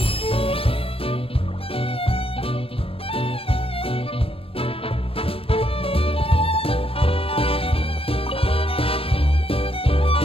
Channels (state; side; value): late; right; 0.27 ms